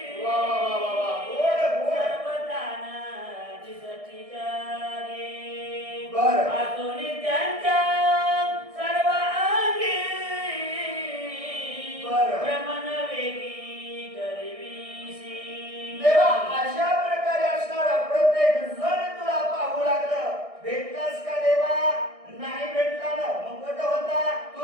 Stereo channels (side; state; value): left; late; 1.6 ms